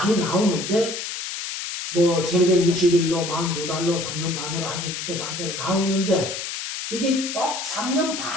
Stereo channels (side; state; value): left; noise; hiss, 6 dB below the sound